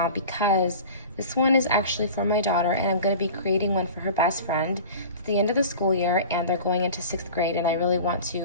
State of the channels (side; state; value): both; inverted; correlation -0.39